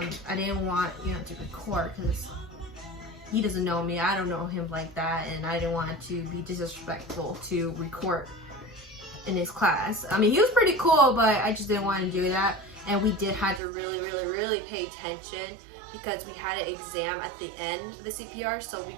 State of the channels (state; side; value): drops out; left; at 13.6 s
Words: I didn't want to record because he doesn't know me. I don't know him like that, and I didn't want to be disrespectful to record in his class. I mean, he was pretty cool, but I just didn't want to do that. And we did have to really pay attention because we had an exam at the end of the CPR, so we